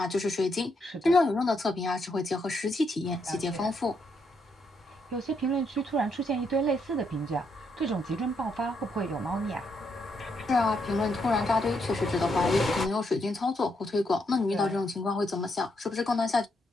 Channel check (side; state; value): both; normal; correlation 0.77